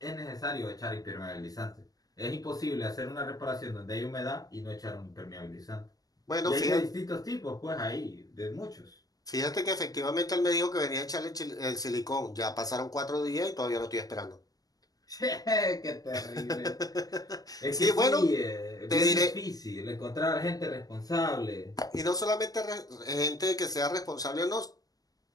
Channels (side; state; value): right; late; 0.18 ms